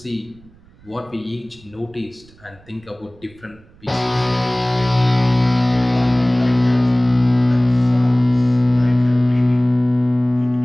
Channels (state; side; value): noise; right; rumble, 27 dB below the sound